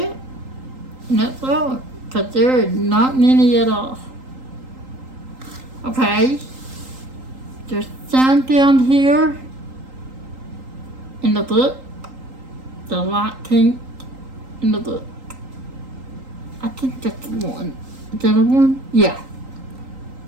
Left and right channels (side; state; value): left; late; 3.8 ms